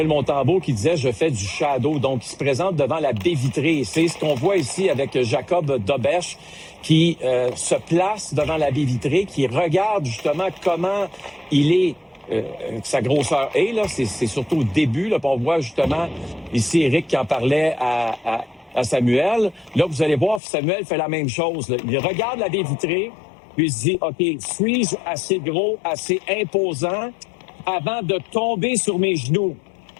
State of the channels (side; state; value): right; drops out; at 20.4 s